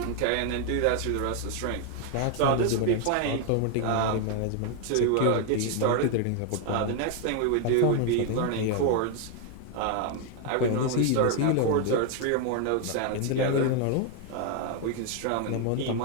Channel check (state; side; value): different; both; correlation 0.00